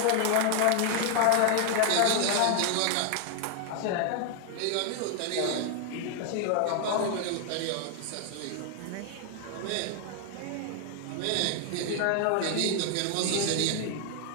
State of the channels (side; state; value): both; different; correlation 0.00